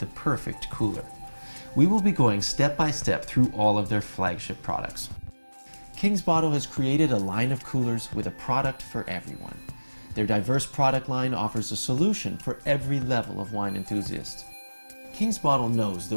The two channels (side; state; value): both; inverted; correlation -1.00